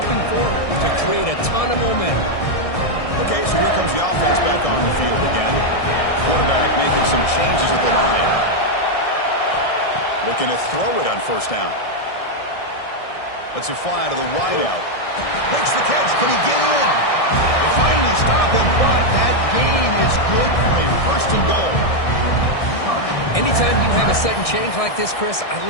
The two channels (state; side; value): late; right; 1.6 ms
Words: for to create a ton of momentum. Okay, so here comes the offense back on the field again. Quarterback making some changes at the line. Looking to throw it on first down. Lets it fly to the wideout. Makes the catch. Can he get in? They finally stop him, but that gain is good for a first and goal. Anytime you have a sudden change like this, Chris, I